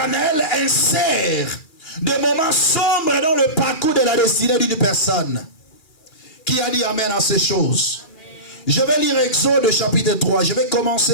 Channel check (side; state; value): right; late; 2.3 ms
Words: insère des moments sombres dans le parcours de la destinée d'une personne. Qui a dit amen à ces choses? Amen. Je vais lire Exode chapitre 3. Je vais